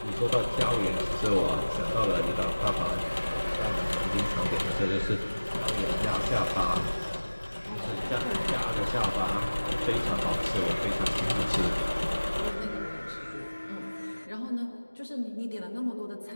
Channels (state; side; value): inverted; both; correlation -1.00